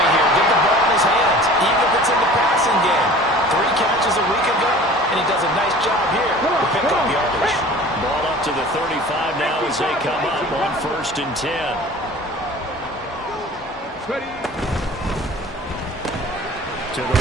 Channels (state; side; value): normal; both; correlation 0.44